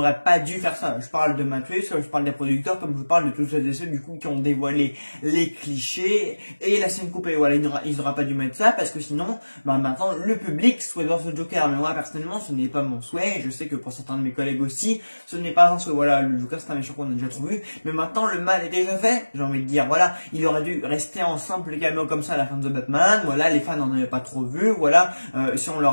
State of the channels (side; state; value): both; inverted; correlation -1.00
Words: pas dû faire ça. Je parle de Matt Reeves, comme je parle des producteurs, comme je parle de tous ceux et ceux du coup qui ont dévoilé les clichés et la scène coupée. Voilà, ils n'auraient pas dû mettre ça parce que sinon, maintenant le public souhaite voir ce Joker. Mais moi personnellement, ce n'est pas mon souhait. Je sais que pour certains de mes collègues aussi, ce n'est pas un souhait. Voilà, le Joker c'est un méchant qu'on a déjà trop vu. Mais maintenant le mal est déjà fait. J'ai envie de dire, voilà, il aurait dû rester en simple caméo comme ça à la fin de The Batman. Voilà, les fans n'en avaient pas trop vu. Voilà, si on